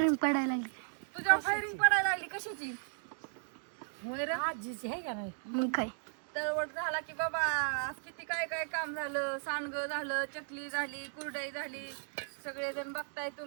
पडायला लागली. तुझ्या फायरिंग पडायला लागली कशाची? होय रे आजीची आहे का नाही? मग काय तळवट झाला की बाबा आज किती काय काय काम झालं. सांडगं झालं, चकली झाली, कुरडई झाली, सगळेजण बघताय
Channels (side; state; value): left; silent; digital silence